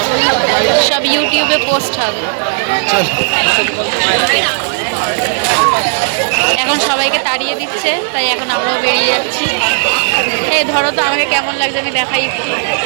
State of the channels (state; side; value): silent; left; digital silence